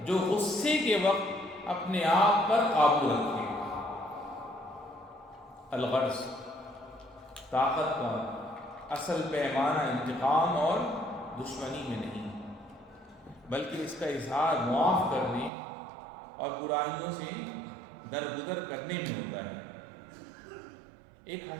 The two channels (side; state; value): left; drops out; at 15.5 s